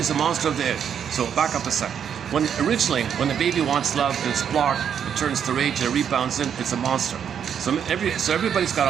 a monster of the id. So back up a sec. Originally, when the baby wants love and it's blocked, it turns to rage and it rebounds in, it's a monster. So everybody's got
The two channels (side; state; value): left; quieter; 8.2 dB